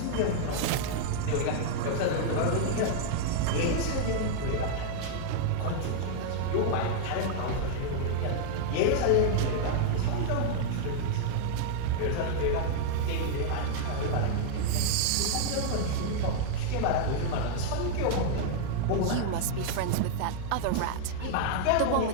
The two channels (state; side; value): different; both; correlation -0.01